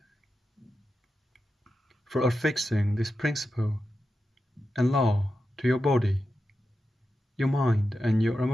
for affixing this principle and law to your body, your mind, and your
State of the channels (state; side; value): normal; both; correlation 0.90